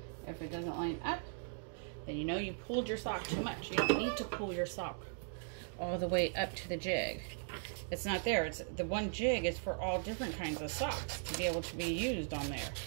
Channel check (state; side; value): silent; left; digital silence